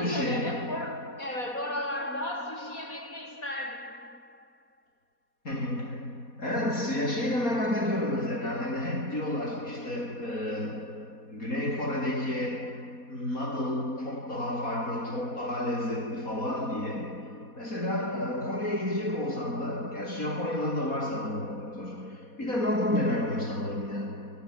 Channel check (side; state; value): right; late; 4.2 ms